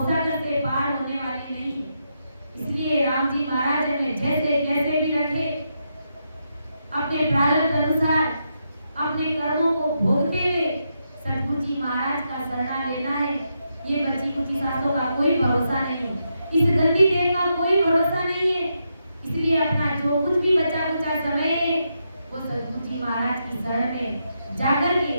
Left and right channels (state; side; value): inverted; both; correlation -0.83